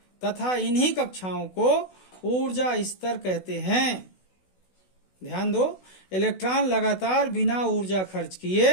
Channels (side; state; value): right; late; 16 ms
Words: तथा इन्हीं कक्षाओं को ऊर्जा स्तर कहते हैं। ध्यान दो, इलेक्ट्रॉन लगातार बिना ऊर्जा खर्च